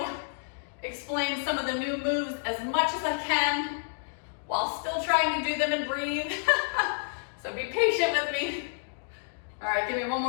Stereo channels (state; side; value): silent; right; digital silence